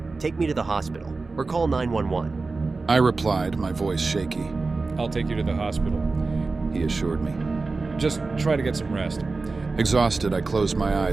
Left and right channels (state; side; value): quieter; left; 3.8 dB